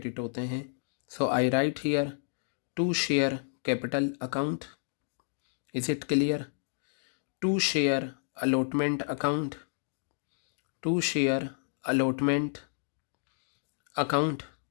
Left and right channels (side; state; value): right; silent; digital silence